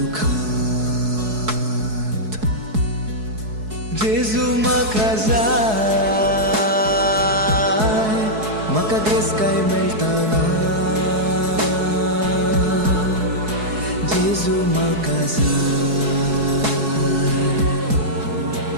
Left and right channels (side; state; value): left; late; 4.7 ms